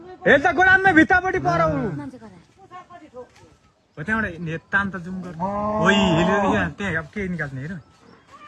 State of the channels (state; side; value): identical; both; correlation 1.00